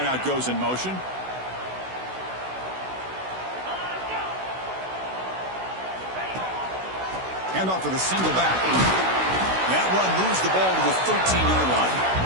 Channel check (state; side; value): late; left; 16 ms